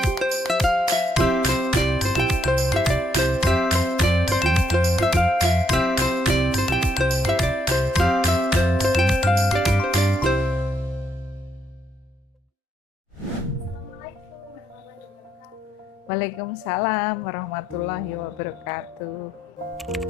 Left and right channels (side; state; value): both; normal; correlation 0.76